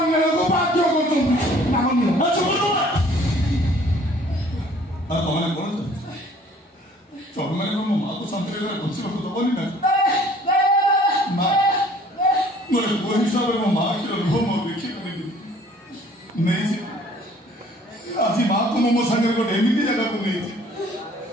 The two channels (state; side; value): normal; both; correlation 0.55